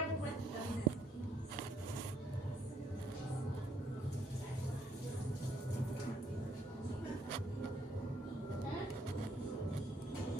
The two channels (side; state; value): both; normal; correlation 0.69